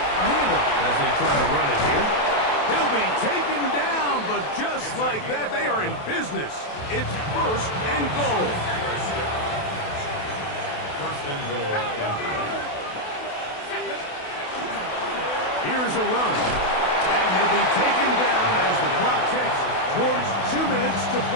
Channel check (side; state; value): right; late; 28 ms